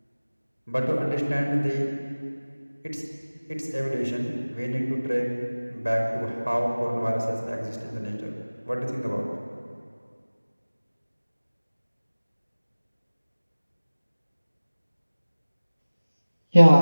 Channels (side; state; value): both; inverted; correlation -1.00